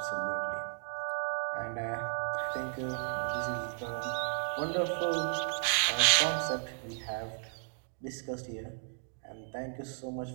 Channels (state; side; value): silent; left; digital silence